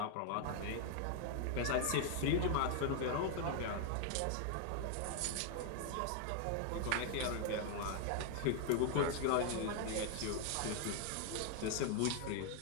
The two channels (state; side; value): different; both; correlation 0.00